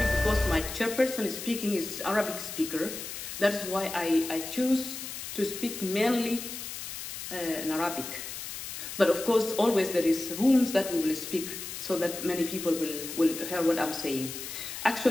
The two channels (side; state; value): left; noise; hiss, 8 dB below the sound